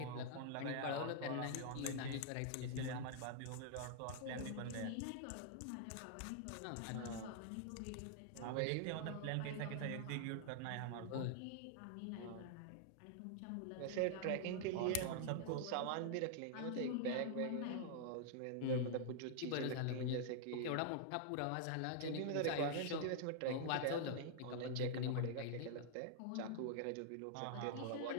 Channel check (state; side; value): different; both; correlation -0.01